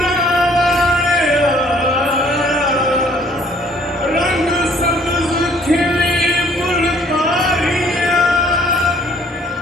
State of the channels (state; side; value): normal; both; correlation 0.59